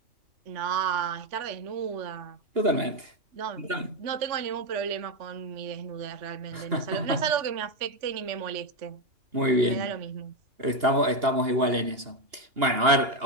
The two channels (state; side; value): late; left; 2.8 ms